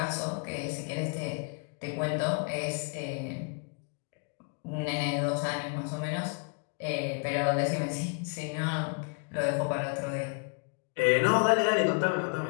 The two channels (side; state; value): right; quieter; 36.1 dB